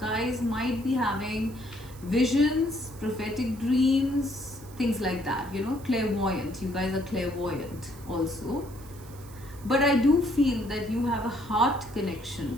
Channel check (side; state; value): right; noise; hiss, 21 dB below the sound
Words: might be having visions, prophetic dreams, things like that, you know, clairvoyant. You guys are clairvoyant also. But I do feel that you have a heart connection